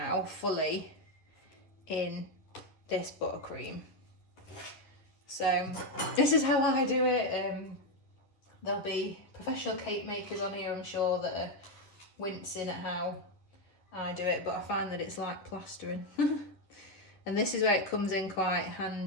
fully in this buttercream. So this is how I do it. There'll be professional cake makers on here, I'm sure, that are wincing at how I do it, but I find that it's like plastering. And this is where it comes in quite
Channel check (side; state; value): right; late; 10 ms